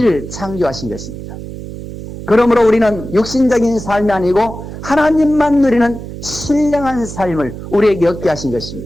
창조하신 것입니다. 그러므로 우리는 육신적인 삶이 아니고 하나님만 누리는 신령한 삶을 우리에게 얻게 하신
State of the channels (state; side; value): noise; right; hum, 11 dB below the sound